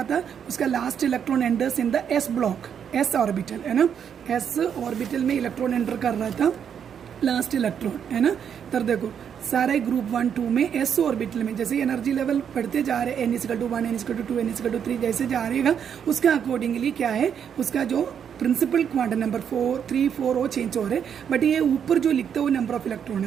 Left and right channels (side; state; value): left; quieter; 8.0 dB